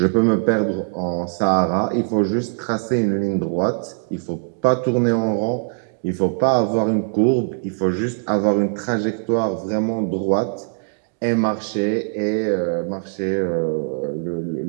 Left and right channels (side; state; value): left; silent; digital silence